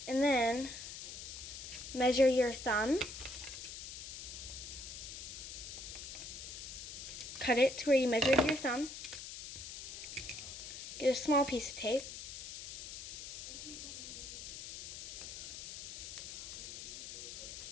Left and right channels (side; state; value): left; noise; hiss, 9 dB below the sound